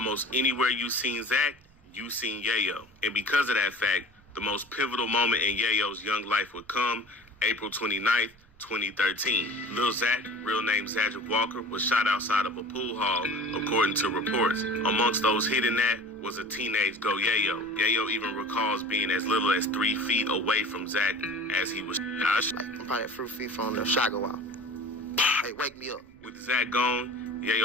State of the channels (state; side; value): noise; right; rumble, 29 dB below the sound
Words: anywhere you seen Zach, you seen Yayo. And because of that fact, the most pivotal moment in Yayo's young life would come April 29th, 2013. Lil Zach, real name Zadrick Walker, was shot outside of a pool hall, according to reports. Amongst those hit in that was a teenage Go Yayo. Yayo even recalls being as little as 3 feet away from Zach as he was shot. I'm probably a few feet from the Shago out. Hey, wake me up. With Zach gone,